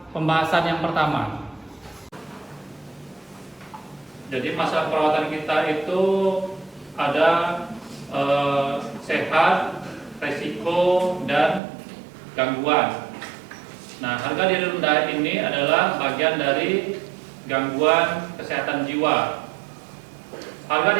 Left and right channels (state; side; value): drops out; left; at 11.6 s